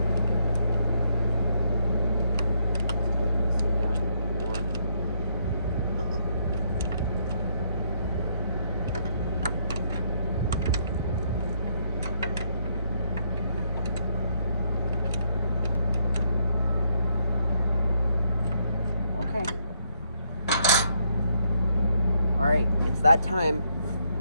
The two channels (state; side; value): inverted; both; correlation -0.74